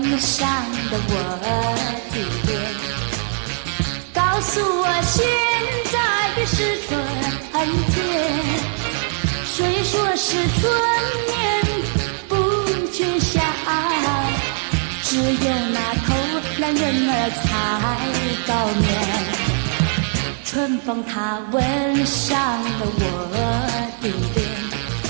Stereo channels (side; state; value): left; silent; 55 dB below the other